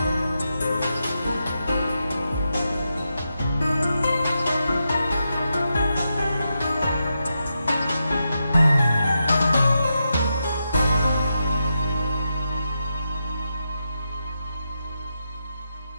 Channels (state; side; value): inverted; both; correlation -0.87